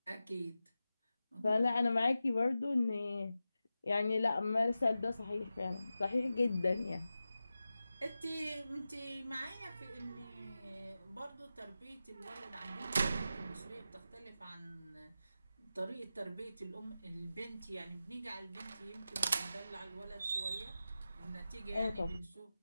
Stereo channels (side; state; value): both; inverted; correlation -0.93